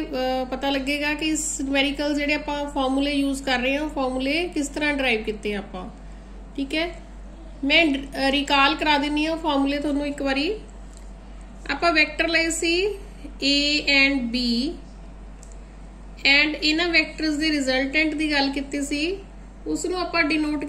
पता लगेगा कि इस न्यूमेरिकल जिहड़े आपां फॉर्मूले यूज कर रहे हैं फॉर्मूले किस तरह ड्राइव किए आपां। ठीक है, मैं रिकॉल करा दिनी हूँ फॉर्मूले तुहानूं एक बारी। ਆਪਾਂ ਵੈਕਟਰ ਲਏ ਸੀ A and B एंड ਇਹਨਾਂ ਵੈਕਟਰਸ ਦੇ ਰਿਜ਼ਲਟੈਂਟ ਦੀ ਗੱਲ ਕੀਤੀ ਸੀ, ਉਸ ਨੂੰ ਆਪਾਂ ਡਿਨੋਟ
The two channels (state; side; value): identical; both; correlation 1.00